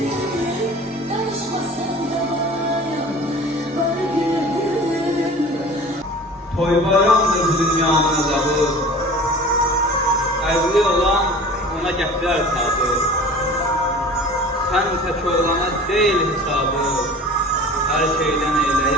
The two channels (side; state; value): both; normal; correlation 0.41